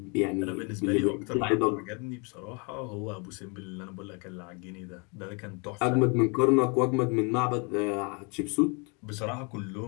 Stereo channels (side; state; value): right; quieter; 33.1 dB